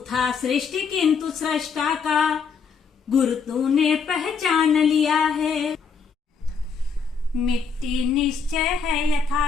था सृष्टि किंतु सृष्टा का गुर तूने पहचान लिया है। मिट्टी निश्चय है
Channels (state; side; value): quieter; right; 5.6 dB